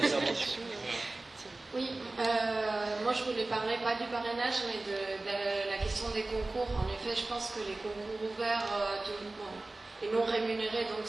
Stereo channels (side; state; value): left; quieter; 3.0 dB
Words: Oui, moi je voulais parler pas du parrainage mais de la question des concours. En effet, je pense que les concours ouverts à tout le monde et non rémunérés, donc